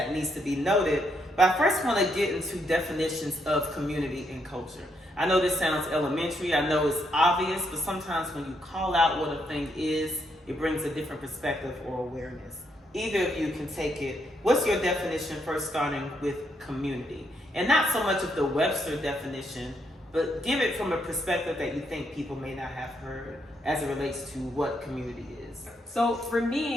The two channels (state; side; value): normal; both; correlation 0.76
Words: needs to be noted. But I first want to get into definitions of community and culture. I know this sounds elementary, I know it's obvious, but sometimes when you call out what a thing is, it brings a different perspective or awareness. Either of you can take it. What's your definition, first starting with community? And not so much of the Webster definition, but give it from a perspective that you think people may not have heard as it relates to what community is. So for